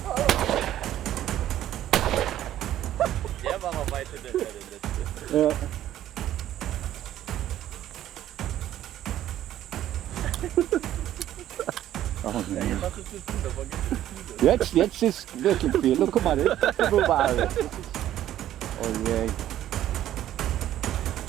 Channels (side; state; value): left; quieter; 12.5 dB